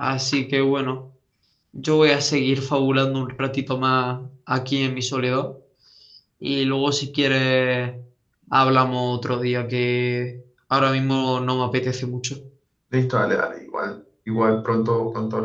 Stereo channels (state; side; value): identical; both; correlation 1.00